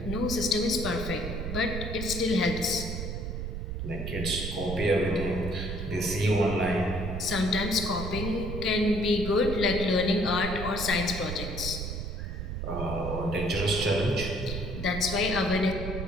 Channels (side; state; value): right; noise; rumble, 5 dB below the sound